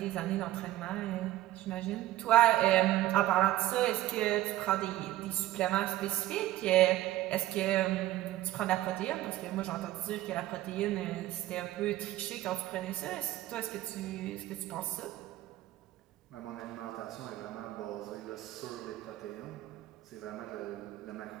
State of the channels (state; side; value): quieter; left; 15.4 dB